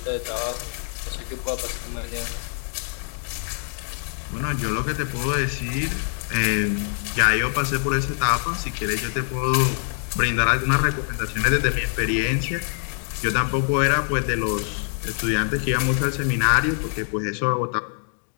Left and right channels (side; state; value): right; silent; 59 dB below the other